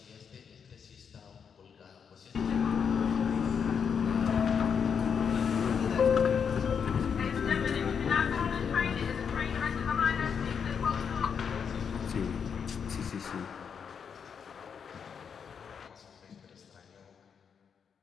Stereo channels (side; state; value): right; quieter; 6.9 dB